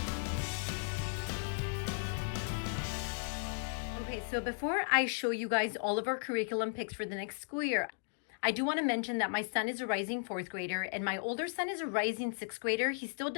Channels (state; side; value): silent; right; digital silence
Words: Okay, so before I show you guys all of our curriculum picks for the next school year, I do want to mention that my son is a rising fourth grader and my older son is a rising sixth grader. He still